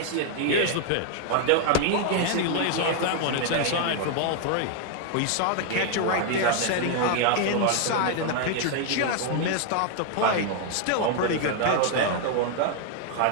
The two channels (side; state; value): both; different; correlation 0.00